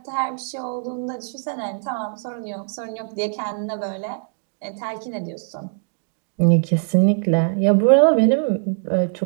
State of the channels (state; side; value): silent; left; 64 dB below the other